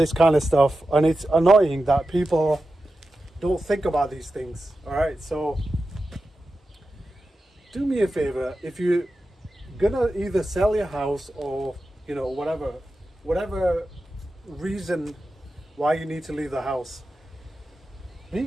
kind of stuff, and it's annoying that people don't think about these things. All right, so do me a favor. If you're gonna either sell your house or whatever reason why you need to leave the house,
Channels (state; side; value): normal; both; correlation 0.92